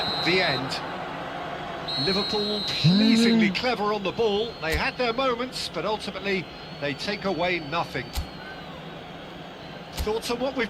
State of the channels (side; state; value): both; identical; correlation 1.00